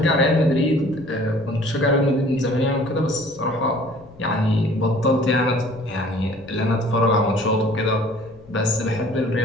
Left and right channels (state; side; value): noise; left; rumble, 24 dB below the sound